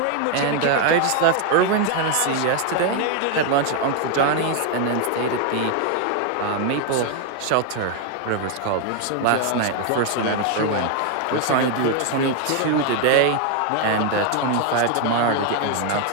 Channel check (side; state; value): both; different; correlation 0.01